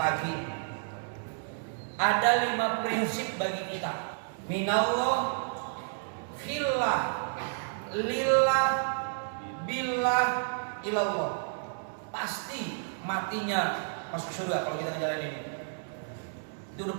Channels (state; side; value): silent; left; digital silence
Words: Ada 5 prinsip bagi kita. Minallah, fillah, lillah, billah, ilallah. Pasti matinya masuk surga kalau kita ngejalanin ini. Itu udah